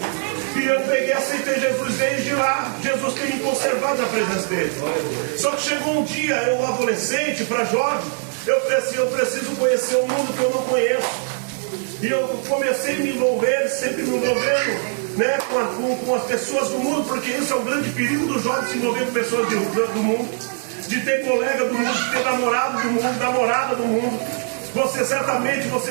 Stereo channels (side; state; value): left; silent; 56 dB below the other